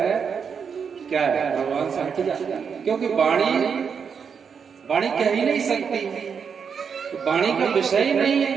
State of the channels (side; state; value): left; quieter; 6.5 dB